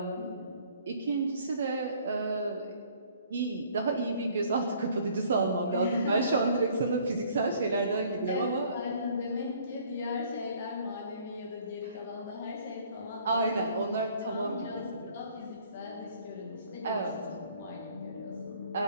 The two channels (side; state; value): both; inverted; correlation -0.57